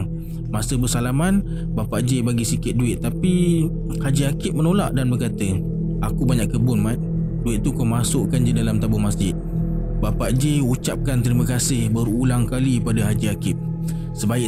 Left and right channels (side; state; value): both; identical; correlation 1.00